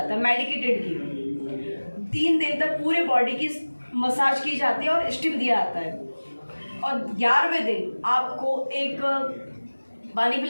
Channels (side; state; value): both; inverted; correlation -1.00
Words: है, मेडिकेटेड घी। 3 दिन तक पूरे बॉडी की मसाज की जाती है और स्टीम दिया जाता है, और 11वें दिन आपको एक पानी